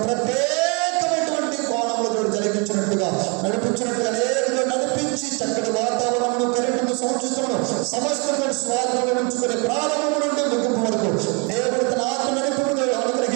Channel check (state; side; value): quieter; left; 32.6 dB